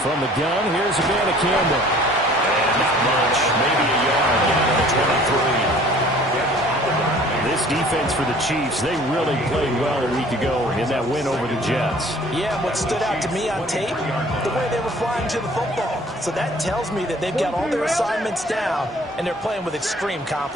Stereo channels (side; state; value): both; normal; correlation 0.52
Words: from the gun, here's a Banacanda. And not much, maybe a yard down to the 23. This defense for the Chiefs, they really played well a week ago in that win over the Jets. Yeah, what stood out to me on tape, the way they were flying to the football. So that tells me that they've got all their assignments down, and they're playing with extreme